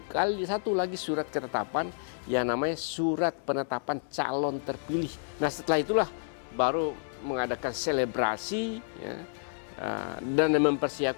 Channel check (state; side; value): silent; right; 58 dB below the other